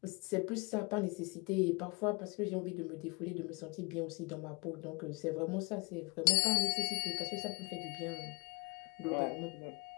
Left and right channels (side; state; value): right; quieter; 28.8 dB